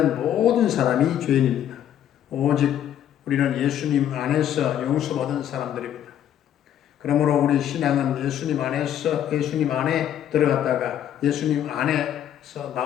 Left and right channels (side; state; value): right; quieter; 10.5 dB